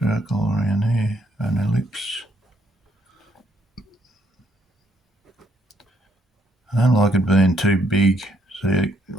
around here, an ellipse. I don't like it being too big. See,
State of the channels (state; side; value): normal; both; correlation 0.71